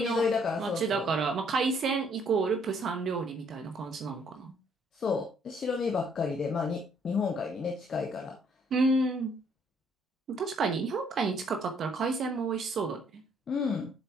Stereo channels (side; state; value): both; normal; correlation 0.66